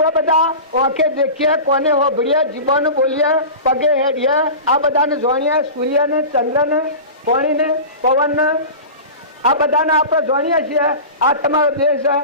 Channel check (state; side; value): inverted; both; correlation -0.32